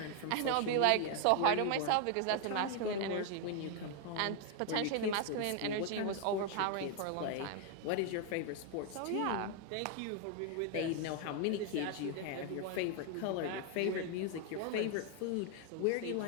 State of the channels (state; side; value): different; both; correlation 0.01